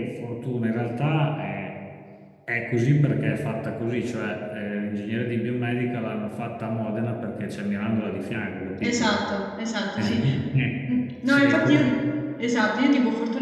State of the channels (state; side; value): identical; both; correlation 1.00